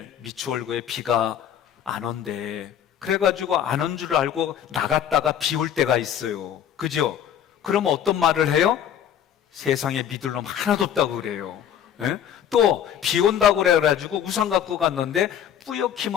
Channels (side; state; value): right; quieter; 9.4 dB